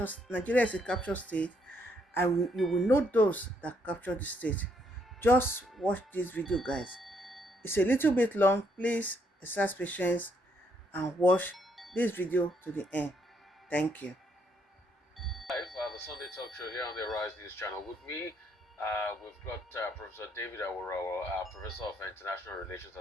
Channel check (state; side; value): normal; both; correlation 0.72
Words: state, and you will know those that captured the state. Just watch this video, guys. It's a little bit long. Please exercise patience and watch this video to the end. Thank you. Live, the Sunday Talk Show here on the Arise News Channel. With me, we've got Professor David Awurawa, Professor of International Relations